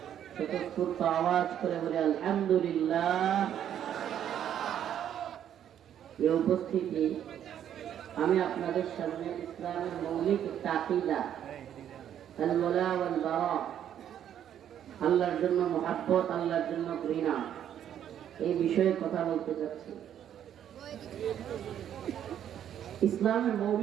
স্বতঃস্ফূর্ত আওয়াজ করে বলে আলহামদুলিল্লাহ। এই উপস্থিতি আমি আপনাদের সামনে ইসলামের মৌলিক একটা আকীদা আল ওয়ালা ওয়াল বারা, আল্লাহর জন্য মুহাব্বত, আল্লাহর জন্য ঘৃণা, এই বিষয়ে কথা বলতে চাচ্ছি। ইসলামের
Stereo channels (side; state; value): left; quieter; 10.0 dB